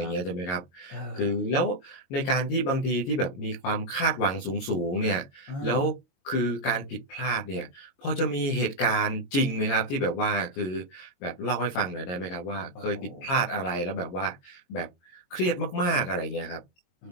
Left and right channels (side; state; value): right; late; 22 ms